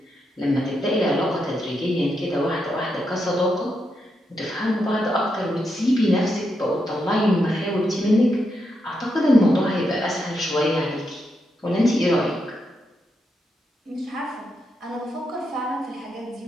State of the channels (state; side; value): normal; both; correlation 0.83